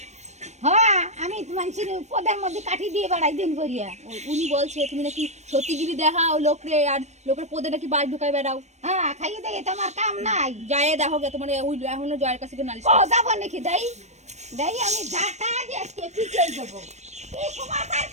হ্যাঁ আমি মানুষের পদের মধ্যে কাঠি দিয়ে বেড়াই দিন করিয়া। উনি বলছে তুমি নাকি সত্যিগিরি দেখাও লোকরে, আর লোকের পদে নাকি বাস ঢুকাই বেড়াও। হ্যাঁ খাইয়ে দেয় তোমার কাম নাই। যায় দেখো গে তোমার ওই এখনো জয়ের কাছে নালিশ ও যাবো নাকি দেই দেই আমি ঝাঁটা দিয়ে পিছিয়ে দেবো। এই সমাচার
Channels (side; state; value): left; late; 0.33 ms